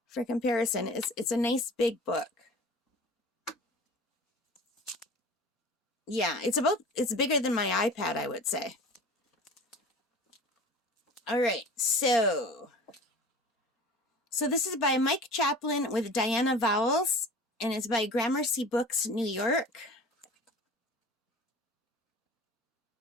for comparison. It's a nice big book. Yeah, it's bigger than my iPad, I would say. All right, so this is by Mike Chaplin with Diana Vowles, and it's by Gramercy Books, New York.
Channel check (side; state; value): both; normal; correlation 0.40